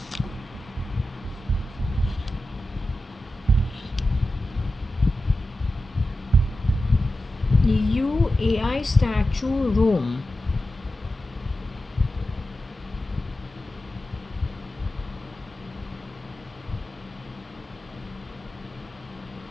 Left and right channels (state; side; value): normal; both; correlation 0.92